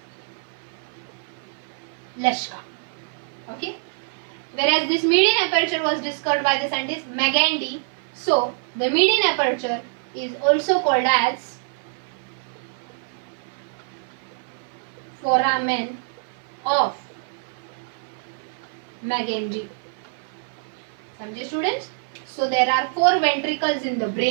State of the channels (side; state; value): left; silent; 56 dB below the other